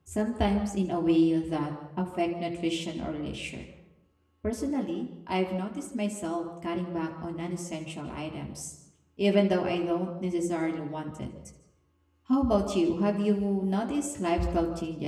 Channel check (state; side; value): identical; both; correlation 1.00